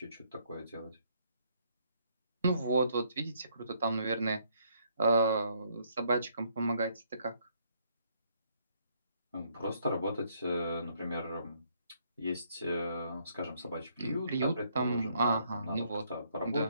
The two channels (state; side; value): inverted; both; correlation -0.70